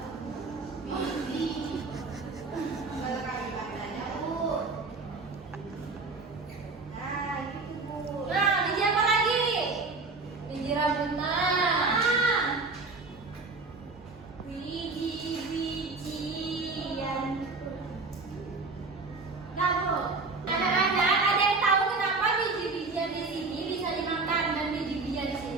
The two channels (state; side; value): quieter; left; 3.8 dB